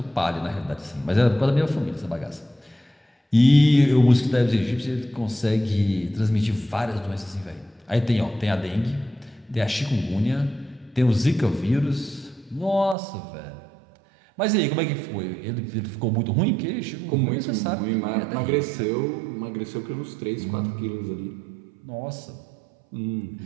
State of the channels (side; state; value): left; drops out; at 13.0 s